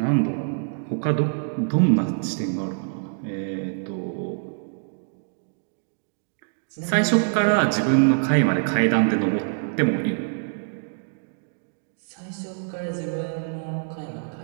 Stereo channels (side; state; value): left; silent; digital silence